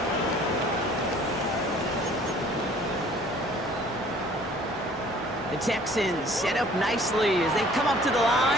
The Texans set up nicely as they come up to the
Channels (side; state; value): both; normal; correlation 0.54